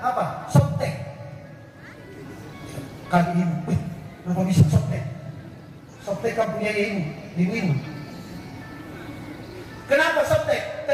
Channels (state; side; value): identical; both; correlation 1.00